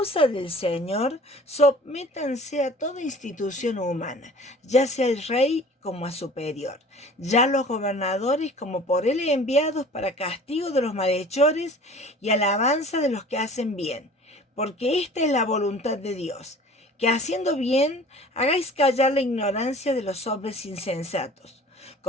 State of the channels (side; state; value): both; normal; correlation 0.46